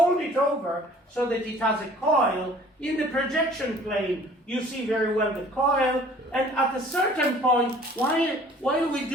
it over so that it has a coil, in the projection plane you see very well the coil, and at a certain point, while we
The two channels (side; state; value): both; normal; correlation 0.52